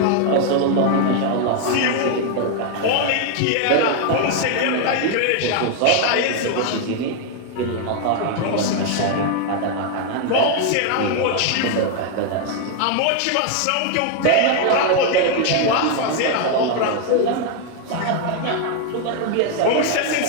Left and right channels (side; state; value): both; different; correlation 0.00